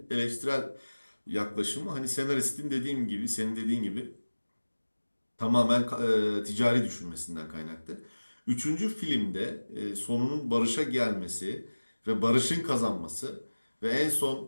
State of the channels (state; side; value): inverted; both; correlation -1.00